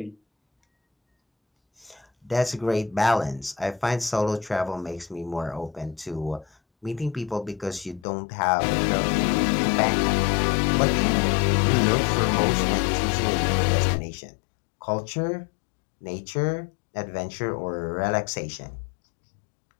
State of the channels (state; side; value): drops out; right; at 8.1 s